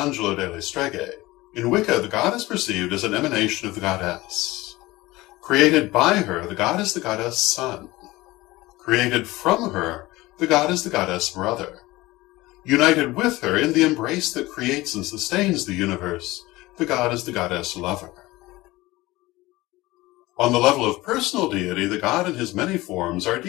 delle Streghe, in Wicca the god is perceived as an emanation of the goddess. Created by her, the god is the goddess son. Created from her, the god is the goddess brother. United with her in the embrace that creates and sustains the universe, the god is the goddess lover. On the level of personal deity, the god in his many forms are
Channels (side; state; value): right; quieter; 19.6 dB